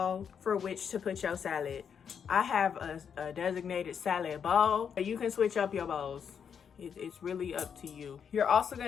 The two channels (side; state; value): right; quieter; 7.3 dB